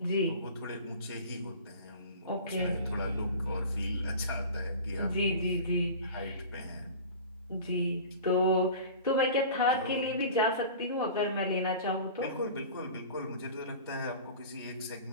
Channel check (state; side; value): inverted; both; correlation -0.38